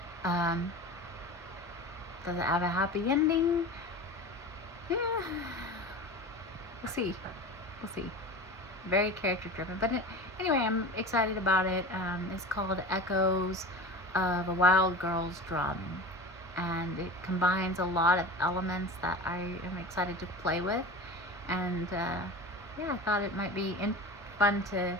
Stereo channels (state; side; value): normal; both; correlation 0.33